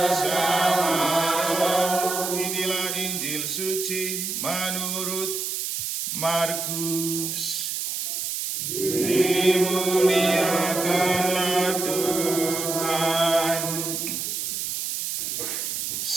Inilah Injil suci menurut Markus. Dimuliakanlah Tuhan.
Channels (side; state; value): right; noise; hiss, 3 dB below the sound